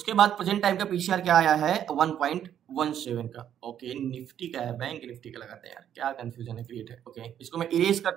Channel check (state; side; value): quieter; left; 9.9 dB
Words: बाद प्रेजेंट टाइम का पीसीआर क्या आया है, 1.17 का। ओके, निफ्टी का है, बैंक निफ्टी का लगाते हैं यार, क्या कंफ्यूजन है क्रिएट है। ओके, इसको मैं इरेज